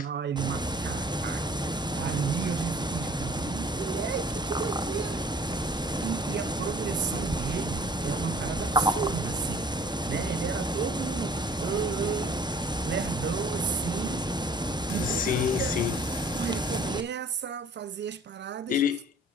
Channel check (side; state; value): both; normal; correlation 0.51